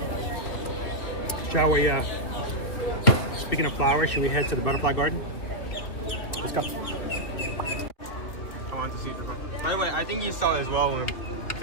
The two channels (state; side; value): late; right; 2.9 ms